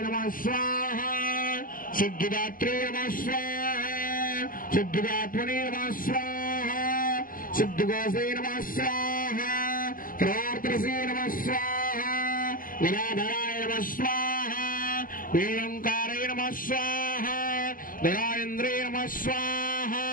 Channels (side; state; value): right; late; 0.41 ms